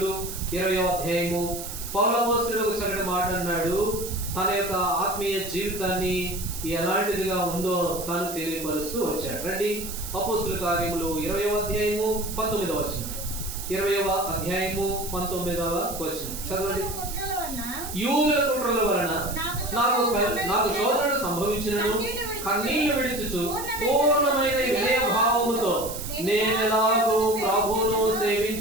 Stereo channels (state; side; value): noise; right; hiss, 9 dB below the sound